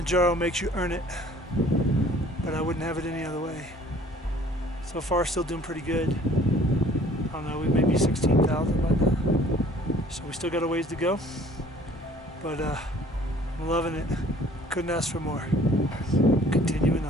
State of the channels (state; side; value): normal; both; correlation 0.54